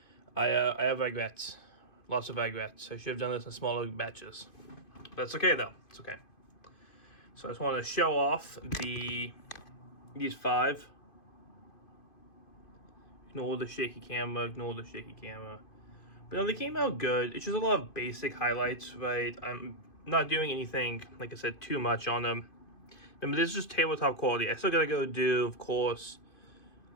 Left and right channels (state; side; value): late; right; 2.5 ms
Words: I have regrets, lots of regrets. I should have done this in smaller batches. But it's okay though, it's okay. So I just want to show off these 5. Ignore the shaky camera, ignore the shaky camera. But no, they came out good. It's just a lot of basic highlights, right? I'm not doing anything, like I said, too much on them. Remember, this is just tabletop quality. I still gotta go do, of course,